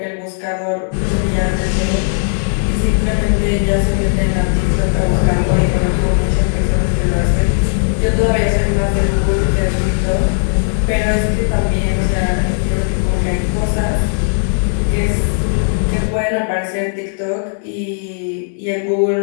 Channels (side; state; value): right; silent; digital silence